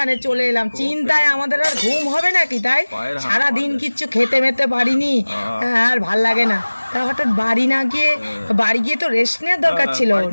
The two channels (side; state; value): both; inverted; correlation -1.00